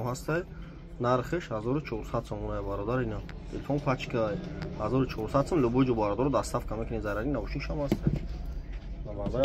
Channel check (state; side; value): identical; both; correlation 1.00